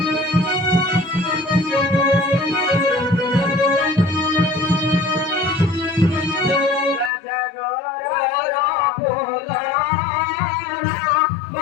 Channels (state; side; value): drops out; right; at 7.1 s